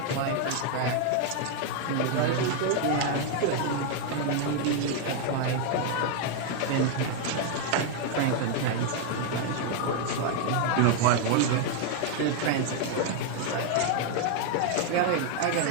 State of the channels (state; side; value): different; both; correlation 0.00